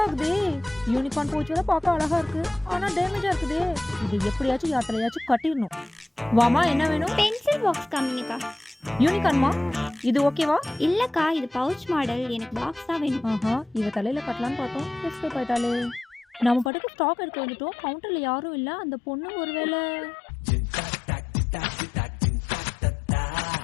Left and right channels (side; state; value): right; drops out; at 16.7 s